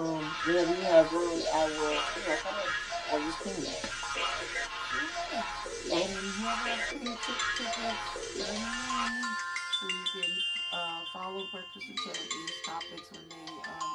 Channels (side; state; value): both; identical; correlation 1.00